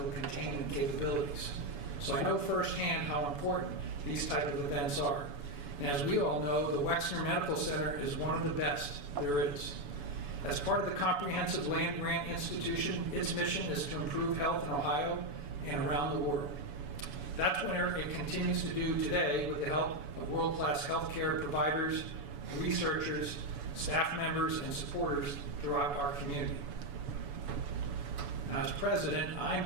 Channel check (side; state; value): left; late; 7.0 ms